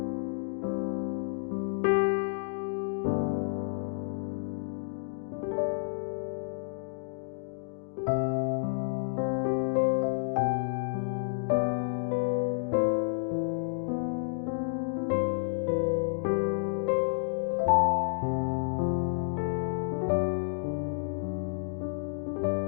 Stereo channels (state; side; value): silent; right; digital silence